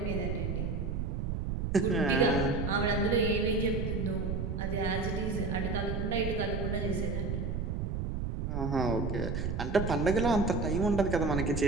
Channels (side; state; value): right; noise; rumble, 1 dB below the sound